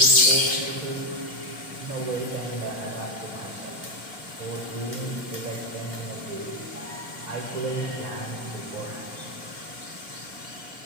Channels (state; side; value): late; left; 2.3 ms